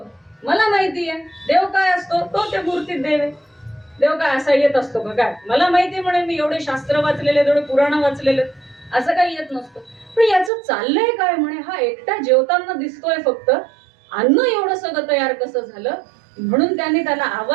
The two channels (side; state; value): left; drops out; at 10.5 s